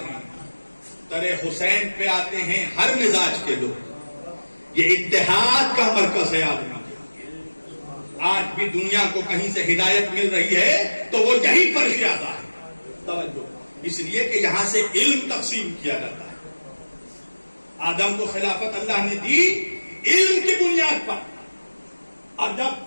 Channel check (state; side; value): inverted; both; correlation -1.00